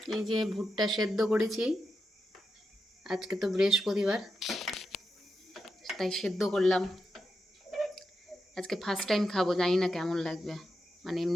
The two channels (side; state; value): both; normal; correlation 0.87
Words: এই যে ভুট্টা সেদ্ধ করেছি, আজকে তো বৃহস্পতিবার, তাই সেদ্ধ করলাম। আজকে ফার্স্ট টাইম খাবো, জানি না কেমন লাগবে, মানে